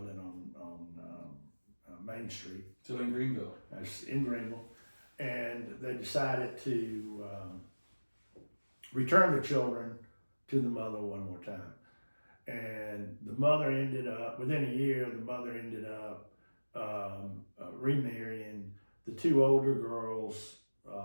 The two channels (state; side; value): inverted; both; correlation -1.00